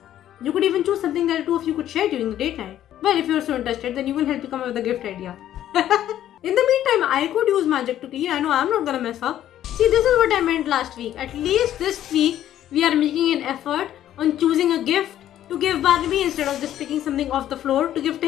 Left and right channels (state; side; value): quieter; right; 11.8 dB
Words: You could even choose something that the two of you could share during the date night. Well, if you're so interested, then you will help you come up with a gift idea. In the meantime, I could use magic to clean. I know I'm not gonna mess up. See, this is what I meant last week. At least this week, we are making an effort on choosing a gift to give Barnaby instead of just picking something off the floor to give